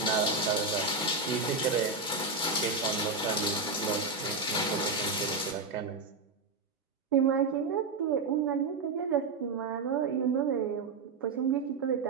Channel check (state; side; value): quieter; left; 3.9 dB